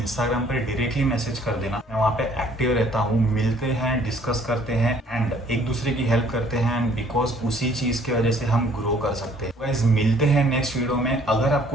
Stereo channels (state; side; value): normal; both; correlation 0.59